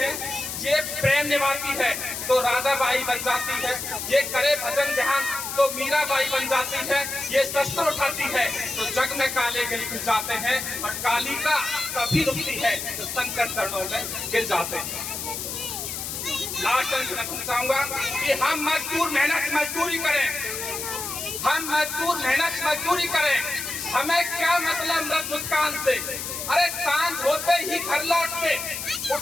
ये प्रेम निभाती है तो राधाबाई बन जाती है, ये करे भजन ध्यान तो मीराबाई बन जाती है, ये शस्त्र उठाती है तो जग में काले गिर जाते हैं, और कालिका कभी रुकती है तो शंकर चरणों में गिर जाते हैं। लास्ट अंत रखना चाहूंगा कि हम मजदूर मेहनत मजदूरी करें, हम मजदूर मेहनत मजदूरी करें। हमें क्या मतलब मृत मुस्कान से। अरे सांझ होते ही घर लौट के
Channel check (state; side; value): noise; left; hiss, 5 dB below the sound